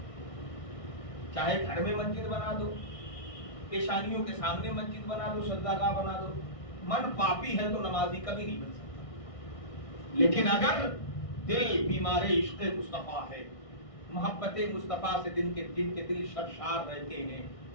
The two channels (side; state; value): right; late; 1.6 ms